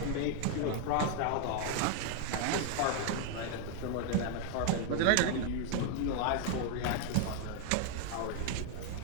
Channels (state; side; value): different; both; correlation 0.00